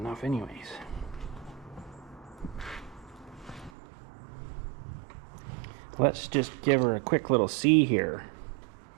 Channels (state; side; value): drops out; left; at 3.7 s